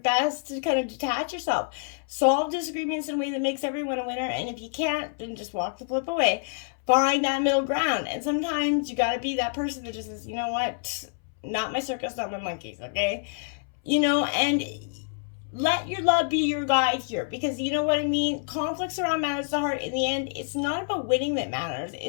to kind of detach yourself. Solve disagreements in a way that makes everyone a winner. And if you can't, then just walk the flip away. Find that middle ground. And sometimes you got to be that person that just says, you know what? Not my circus, not my monkeys, okay? And let your love be your guide here, because you know what I mean? Conflicts around matters of the heart. In the end, it's not about winning that matters.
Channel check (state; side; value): silent; right; 60 dB below the other